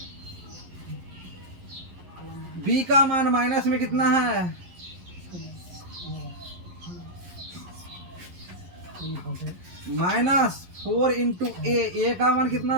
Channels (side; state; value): left; late; 11 ms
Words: b का मान माइनस में कितना है? -4 इंटू a का मान